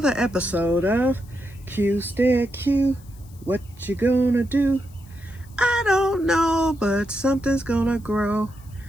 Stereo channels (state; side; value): noise; left; hiss, 27 dB below the sound